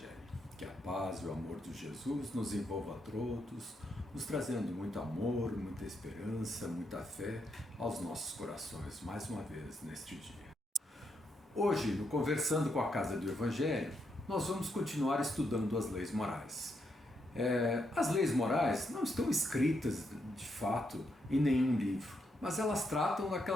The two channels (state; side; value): normal; both; correlation 0.79